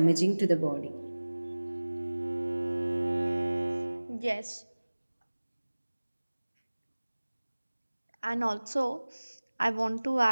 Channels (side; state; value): both; inverted; correlation -1.00